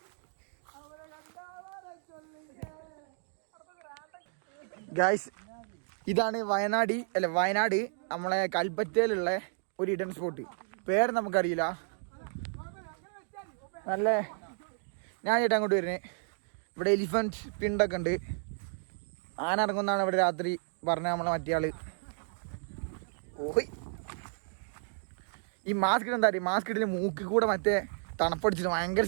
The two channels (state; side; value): silent; left; digital silence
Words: ഗായ്സ് ഇതാണ് വയനാട് നമ്മളെ കൽപ്പറ്റയിലുള്ള ഒരു ഇഡൻ സ്പോട്ട്. പേര് നമുക്കറിയില്ല. നല്ല ഞാൻ ചേട്ടാ അങ്ങോട്ട് വരുന്നത്. ഇവിടെ എലിഫൻറ്റ് പിണ്ടൊക്കെ ഉണ്ട്. ആന ഇറങ്ങുന്നതാണ് ഇവിടെ രാത്രി പറഞ്ഞ നമ്മളെ മറ്റേ ആള്. ഓയ് ഈ മാസ്ക് ഇട്ട് എന്താ പറയുക, മാസ്ക് ഇട്ടിട്ട് മൂക്കിൽ കൂടെ മറ്റേ തണുപ്പടിച്ചിട്ട് ഭയങ്കര